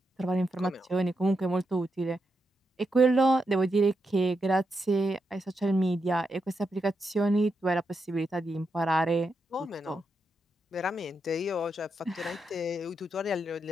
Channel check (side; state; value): both; normal; correlation 0.84